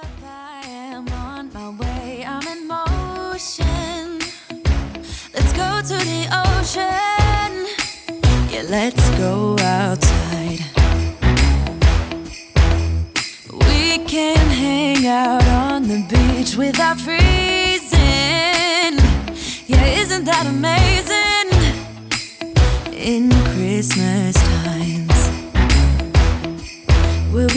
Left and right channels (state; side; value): identical; both; correlation 1.00